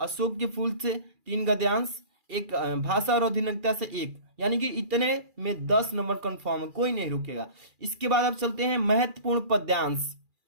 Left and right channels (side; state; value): left; late; 2.4 ms